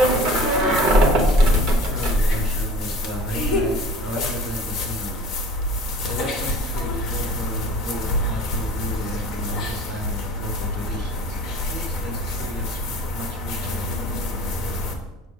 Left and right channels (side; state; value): both; normal; correlation 0.45